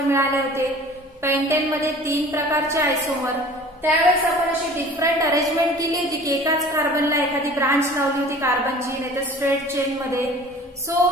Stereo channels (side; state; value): both; normal; correlation 0.45